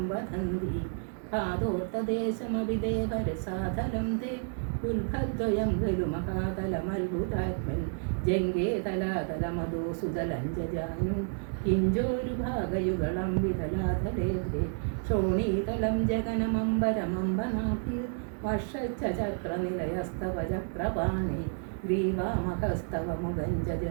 വദന്തി പാദോർത്തദേശമവിദേവരസാധലം തേ ഉൽഭദ്വയം ഖലു മഹാതലമത്ഭുതാത്മൻ ജംഗേ തലാതലമദോ സുതലഞ്ജാനു കിഞ്ചോരുഭാഗയുഗളം വിതലാതലേഭേ ശോണീതലം ജഗനമംബരമംബനാഭി വർഷച്ചക്രനിലയസ്തവ ചക്രപാണി ഗ്രീവാമഹസ്തവ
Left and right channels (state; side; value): silent; left; 57 dB below the other